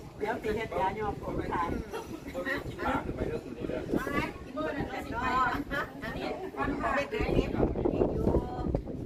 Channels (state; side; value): identical; both; correlation 1.00